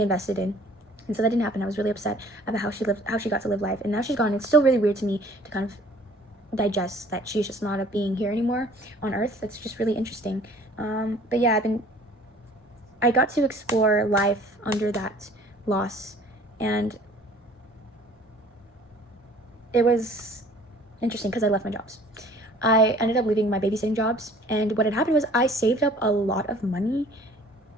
invested in. And so that didn't happen. I was really upset about how she got to live life, and now she's gone. It's still really weird to me to kind of digest that she's just not a being here anymore on Earth. That's just really interesting. But yeah, I got to explore life under that loss, and it was interesting because I left my jobs. I ended up leaving my babysitting jobs, and what had happened was I saved up a lot of money,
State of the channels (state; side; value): normal; both; correlation 0.52